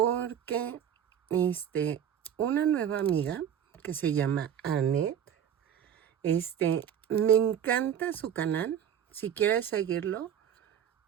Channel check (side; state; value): left; quieter; 9.2 dB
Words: una nueva amiga que se llama Annette, me encanta su canal. Si quieres seguirlo,